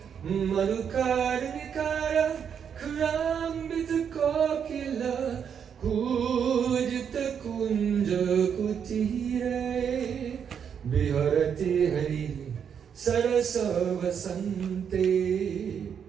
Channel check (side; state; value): left; quieter; 7.6 dB